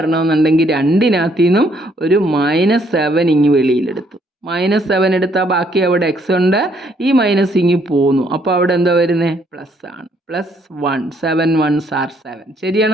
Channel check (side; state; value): both; normal; correlation 0.68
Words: രണ്ടിനകത്തു നിന്നും ഒരു -7 ഇങ്ങ് വെളിയിലെടുത്തു. -7 എടുത്താൽ ബാക്കി അവിടെ x ഉണ്ട്. ഈ മൈനസ് ഇങ്ങ് പോന്നു. അപ്പോൾ അവിടെ എന്താ വരുന്നത്? പ്ലസ് ആണ്. +1 7 1s are 7.